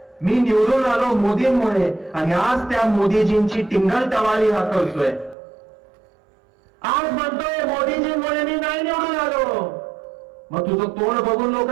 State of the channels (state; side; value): drops out; left; at 5.4 s